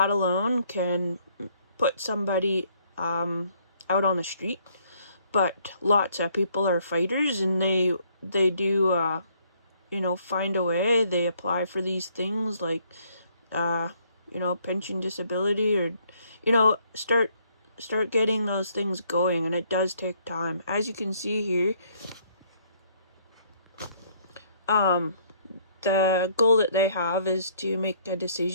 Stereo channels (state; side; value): inverted; both; correlation -0.66